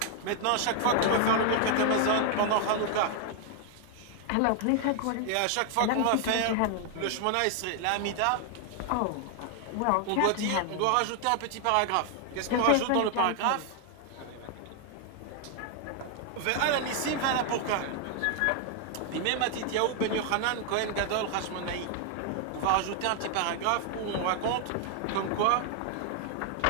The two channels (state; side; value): different; both; correlation 0.00